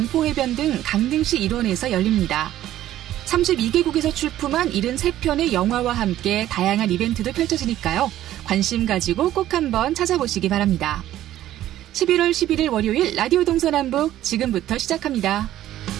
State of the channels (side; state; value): left; quieter; 13.2 dB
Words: 등 강릉시 일원에서 열립니다. 32개국에서 출품한 73편의 영화와 함께 다양한 이벤트도 펼쳐지니까요. 관심 가지고 꼭 한번 찾아보시기 바랍니다. 11월 11일 월요일 라디오 동서남북 지금부터 시작합니다.